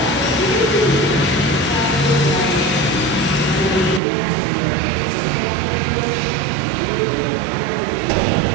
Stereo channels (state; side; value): drops out; left; at 4.0 s